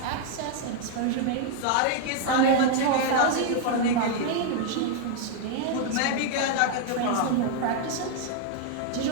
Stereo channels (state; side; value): different; both; correlation 0.00